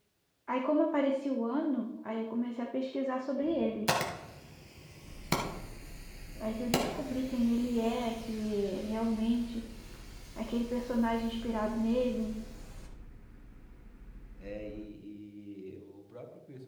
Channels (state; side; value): identical; both; correlation 1.00